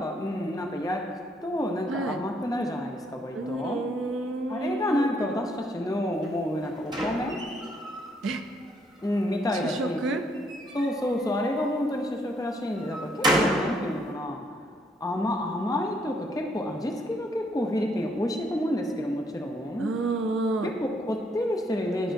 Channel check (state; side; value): normal; both; correlation 0.71